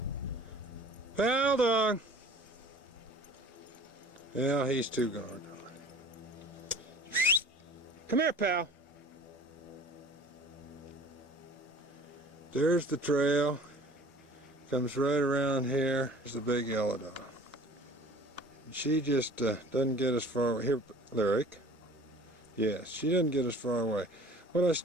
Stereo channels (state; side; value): normal; both; correlation 0.46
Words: Pal dog! Yeah, he's too gone. Come here, pal. There's the trail. Comes right around here. There's the big yellow dog. She just doesn't get as far away. Here, Lyric. Yes, she doesn't get as far away. What I